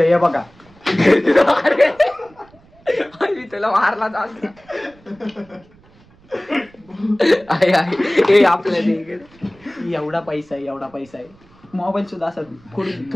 आहे बघा. तुला मारला आपल्या एवढा पैसा आहे. मोबाईल सुद्धा असा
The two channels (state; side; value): noise; right; rumble, 28 dB below the sound